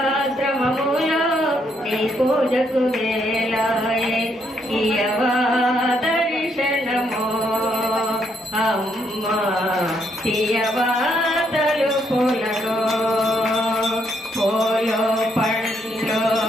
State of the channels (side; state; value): both; normal; correlation 0.74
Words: శ్రమములో నీ పూజకు వేలాయే ఇయవా దర్శనము అమ్మా తీయవా తలుపులను పూలు పండ్లు